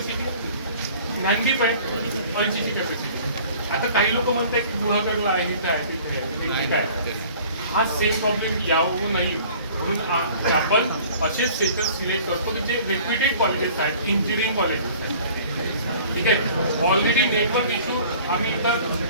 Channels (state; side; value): inverted; both; correlation -0.49